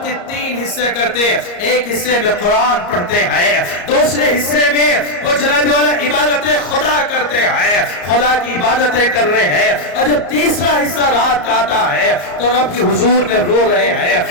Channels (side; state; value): right; late; 34 ms